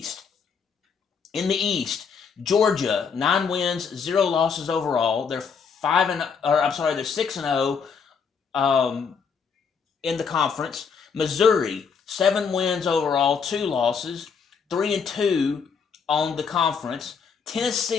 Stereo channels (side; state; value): right; quieter; 6.0 dB